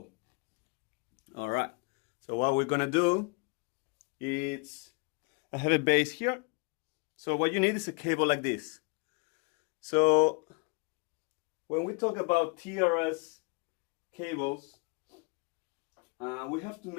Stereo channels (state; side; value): quieter; right; 31.3 dB